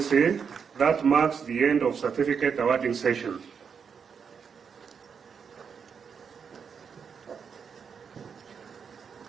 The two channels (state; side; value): quieter; left; 6.5 dB